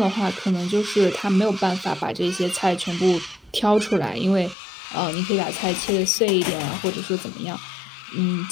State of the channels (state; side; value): drops out; right; at 4.5 s